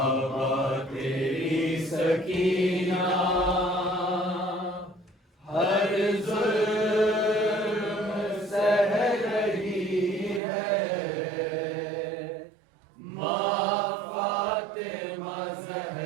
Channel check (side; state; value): left; drops out; at 10.4 s